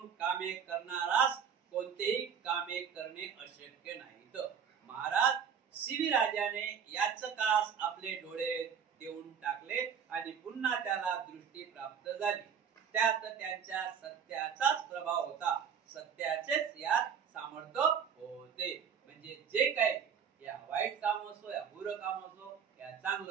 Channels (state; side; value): quieter; left; 7.3 dB